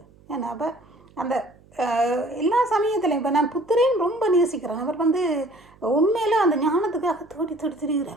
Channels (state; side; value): noise; right; hum, 28 dB below the sound